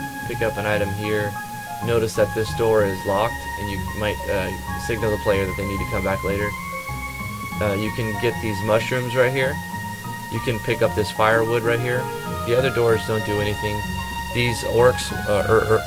pick up an item here. Notice that this door is locked, and you might signal the player that they need to come back later. You can get these mushrooms right here. You can pick up this firewood right here. The other doors don't do anything. These orcs or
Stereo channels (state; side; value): identical; both; correlation 1.00